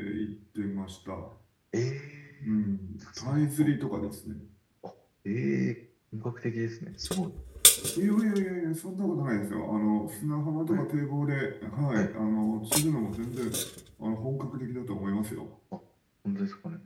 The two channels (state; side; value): identical; both; correlation 1.00